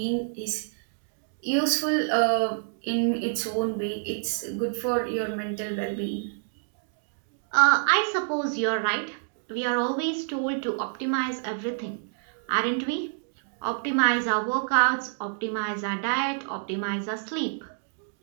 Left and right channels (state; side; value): silent; left; digital silence